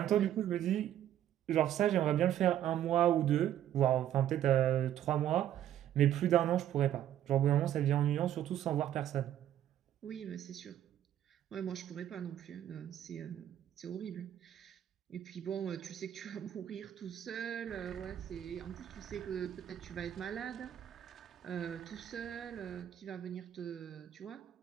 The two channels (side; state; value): left; quieter; 11.3 dB